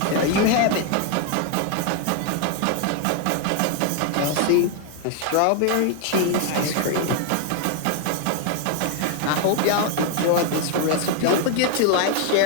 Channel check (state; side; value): different; both; correlation 0.00